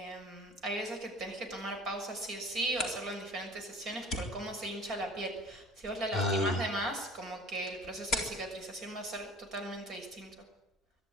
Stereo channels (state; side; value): normal; both; correlation 0.46